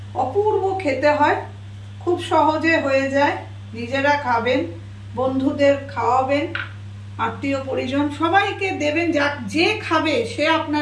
অপূর্ব খেতে হয়, খুব সহজে হয়ে যায়। নিজেরা খাবেন, বন্ধুদের খাওয়াবেন, আত্মীয় পরিজন সবাইকে দেবেন। যে খাবে সে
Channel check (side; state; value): both; identical; correlation 1.00